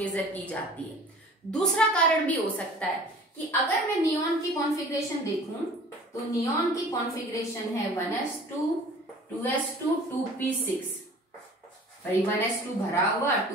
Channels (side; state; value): both; normal; correlation 0.46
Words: की जाती है। दूसरा कारण भी हो सकता है कि अगर मैं नियॉन की कॉन्फ़िगरेशन देखूं तो नियॉन की कॉन्फ़िगरेशन है 1s2 2s2 2p6, भाई 1s2 भरा हुआ,